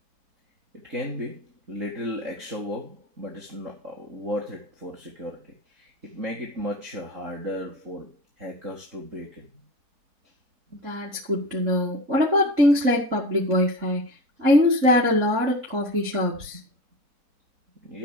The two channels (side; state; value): left; late; 3.7 ms